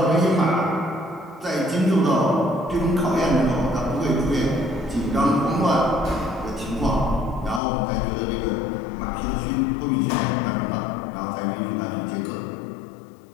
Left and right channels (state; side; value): drops out; right; at 7.6 s